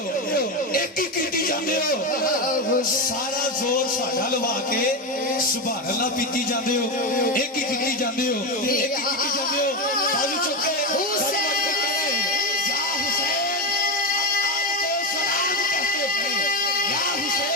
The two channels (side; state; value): both; normal; correlation 0.14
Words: एक ही की जाते हो। सारा जोर साडा लवा के सुभान अल्लाह पीती जाते हो, एक ही की जाते हो, एक ही की जाते हो। बाजू चुके